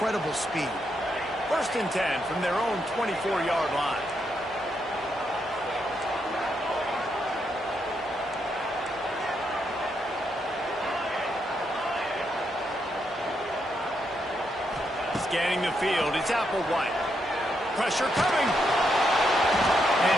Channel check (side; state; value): both; normal; correlation 0.80